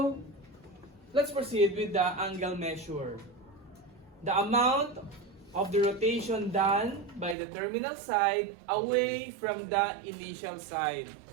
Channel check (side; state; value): left; drops out; at 7.4 s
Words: let's proceed with the angle measure. The amount of the rotation done by the terminal side away from the initial side.